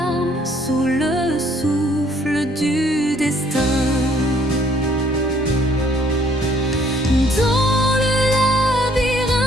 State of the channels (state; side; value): normal; both; correlation 0.63